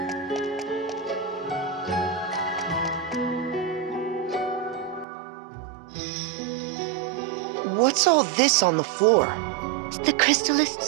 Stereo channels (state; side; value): drops out; left; at 5.1 s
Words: all this on the floor? The crystallist